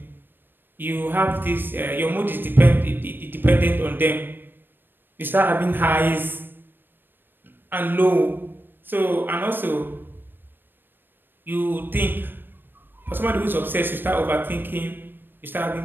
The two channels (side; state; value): left; late; 0.095 ms